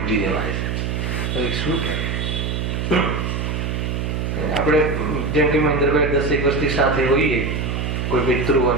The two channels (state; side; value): noise; right; hum, 1 dB below the sound